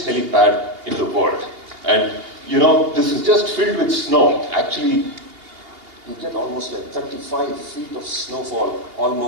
helipad in the world. And you know, this is just filled with snow. Actually, you get almost like 35 feet of snowfall,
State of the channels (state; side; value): late; left; 2.8 ms